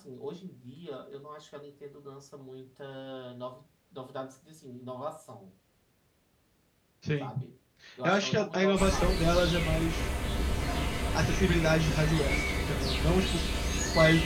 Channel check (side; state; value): both; identical; correlation 1.00